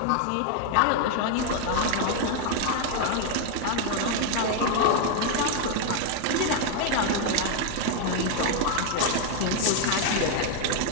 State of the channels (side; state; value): both; different; correlation 0.01